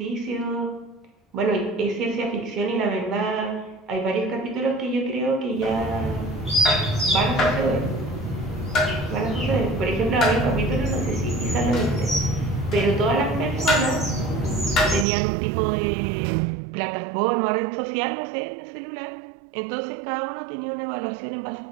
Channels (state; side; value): drops out; left; at 15.1 s